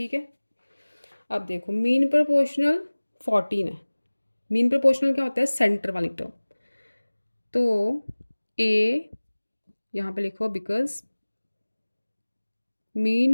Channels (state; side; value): inverted; both; correlation -1.00